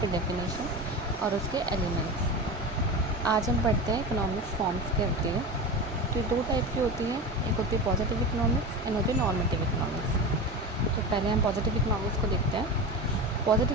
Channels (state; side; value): normal; both; correlation 0.26